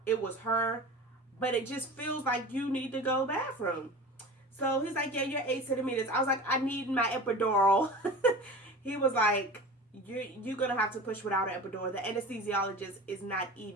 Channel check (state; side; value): normal; both; correlation 0.35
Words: it was her, but it just feels like you need to go to the bathroom. So he's like, yeah, you're 8 centimeters. I was like, I need my epidural. He was like, you're going to have to push without an epidural. The anesthesiologist is not